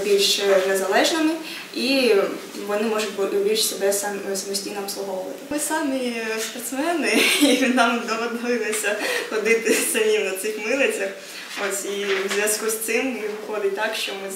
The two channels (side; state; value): both; identical; correlation 1.00